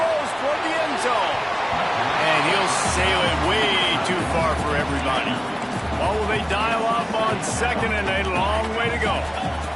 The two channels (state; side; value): identical; both; correlation 1.00